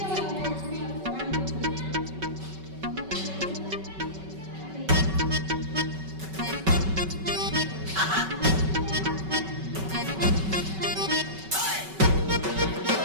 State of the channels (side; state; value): left; late; 5.3 ms